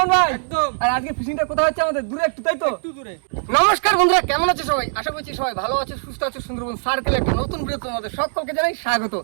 ভাই? একদম। আর আজকে ফিশিংটা কোথায় হচ্ছে? আমাদের দূরে একটু, তাই তো? একটু দূরে। নমস্কার বন্ধুরা, কেমন আছে সবাই? আশা করছি সবাই ভালো আছে, সুস্থ আছে। সুন্দরবন সার্কেল একটা নতুন ভিডিও তোমাদের সকলকে জানাই স্বাগত।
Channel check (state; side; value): silent; left; digital silence